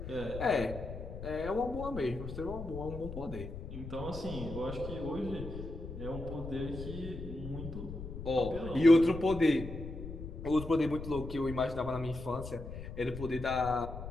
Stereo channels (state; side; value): noise; left; rumble, 9 dB below the sound